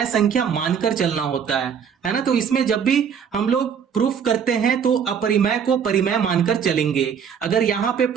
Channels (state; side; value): quieter; left; 7.4 dB